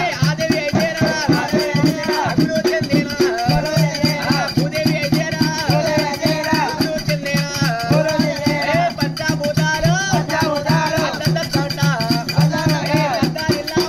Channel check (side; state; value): both; identical; correlation 1.00